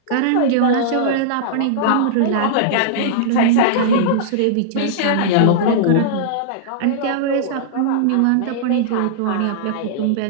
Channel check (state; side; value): different; both; correlation -0.02